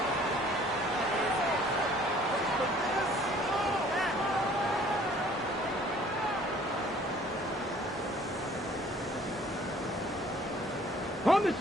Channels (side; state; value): both; normal; correlation 0.55